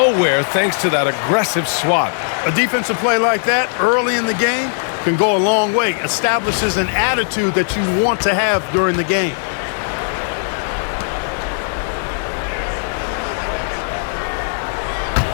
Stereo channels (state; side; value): silent; right; 62 dB below the other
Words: thanks to that aggressive swat. A defensive play like that early in the game can go a long way. Establishes an attitude that you want to have during the game.